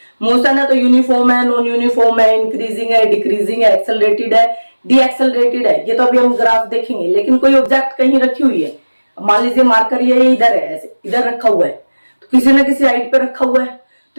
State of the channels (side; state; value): both; inverted; correlation -1.00